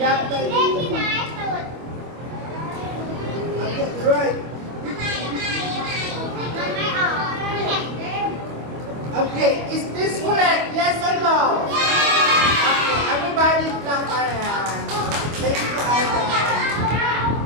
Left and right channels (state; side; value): late; left; 25 ms